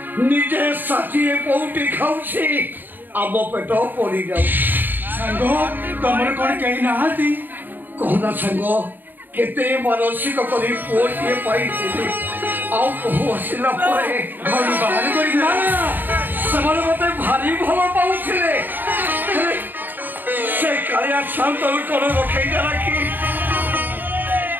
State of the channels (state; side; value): late; left; 0.090 ms